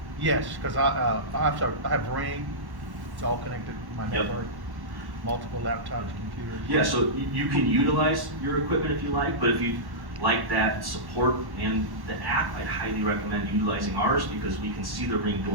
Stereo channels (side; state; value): left; late; 1.1 ms